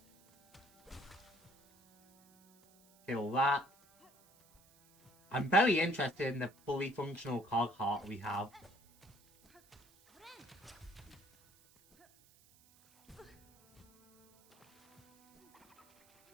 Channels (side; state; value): right; noise; hiss, 29 dB below the sound